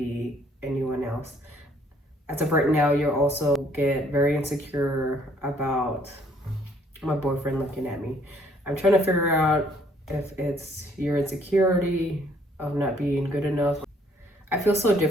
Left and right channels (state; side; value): normal; both; correlation 0.63